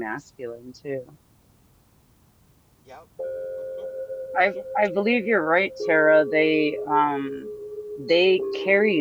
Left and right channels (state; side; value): identical; both; correlation 1.00